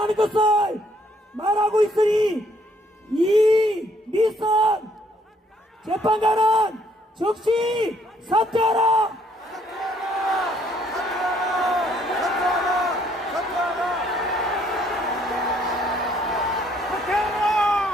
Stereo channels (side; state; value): both; normal; correlation 0.66